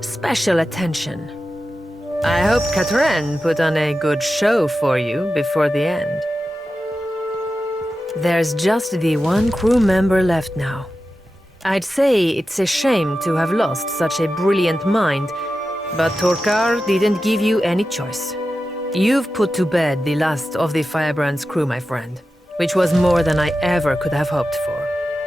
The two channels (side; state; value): both; normal; correlation 0.92